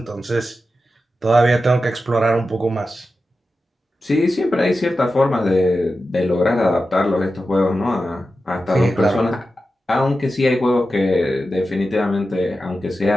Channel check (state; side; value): normal; both; correlation 0.92